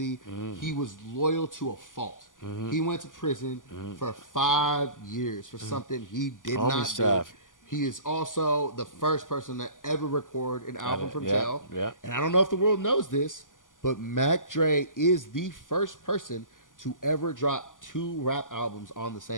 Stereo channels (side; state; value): right; late; 0.88 ms